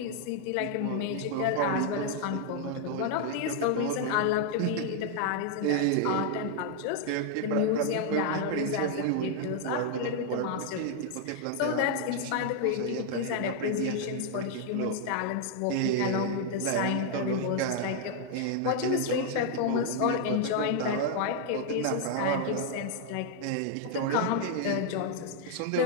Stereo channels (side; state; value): both; different; correlation 0.00